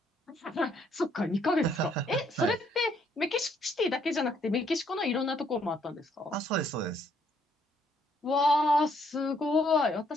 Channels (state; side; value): normal; both; correlation 0.68